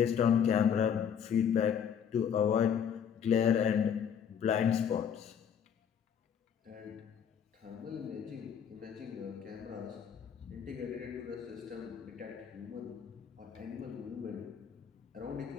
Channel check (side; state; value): right; quieter; 8.0 dB